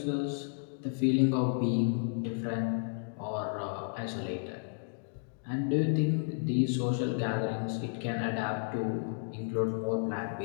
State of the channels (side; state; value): right; silent; digital silence